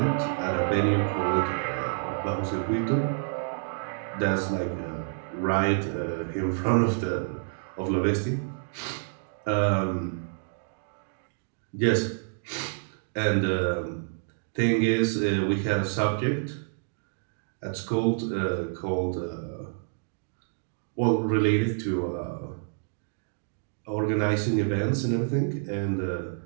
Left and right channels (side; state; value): left; silent; digital silence